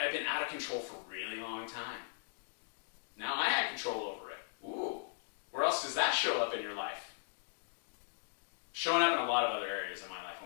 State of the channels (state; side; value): silent; right; digital silence